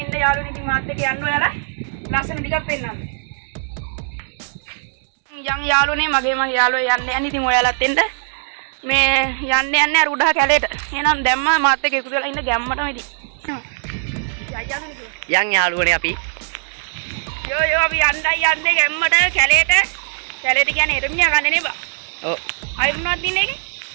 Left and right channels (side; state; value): left; silent; digital silence